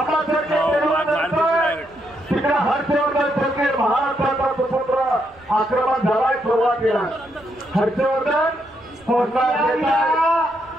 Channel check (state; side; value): noise; right; rumble, 29 dB below the sound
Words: तिकडे हर्षवर्धन सरकार महाराष्ट्राचा सुपुत्र आक्रमण झालाय सुरुवातीला हर्षवर्धन